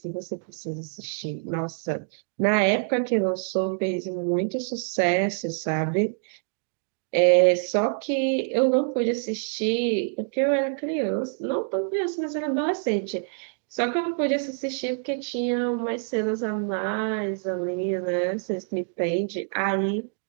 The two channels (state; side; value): silent; left; digital silence